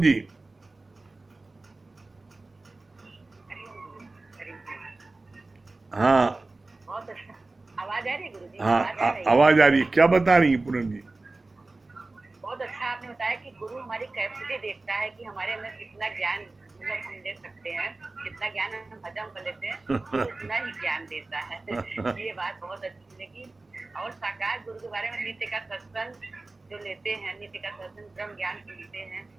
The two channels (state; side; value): quieter; left; 3.2 dB